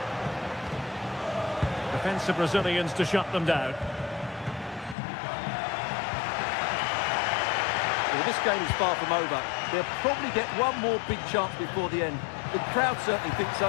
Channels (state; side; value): drops out; right; at 5.0 s